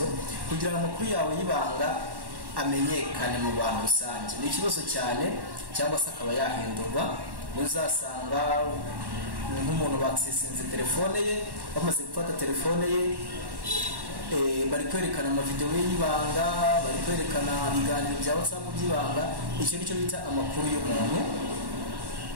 kugira ngo amakuru yawe y'ibanga amenyekane mu bantu rusange ni ikibazo cyane, cyangwa se akaba yahindurwa. Uzasanga nk'umuntu bakisinze telefone ye, bamaze gufata telefone ye, bari kwerekana amavideo y'ibanga, bari kwerekana ibiganiro bya WhatsApp by'ibanga. Icyo nicyo bita amakuru y'umuntu,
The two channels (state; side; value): late; left; 1.1 ms